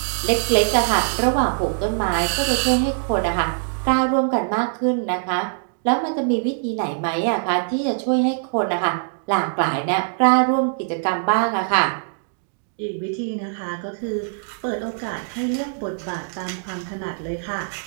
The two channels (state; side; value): silent; left; digital silence